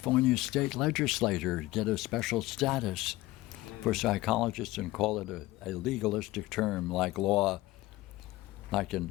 state legislature, get a special status for psychologists and call it a legalistic term like law,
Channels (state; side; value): quieter; right; 18.5 dB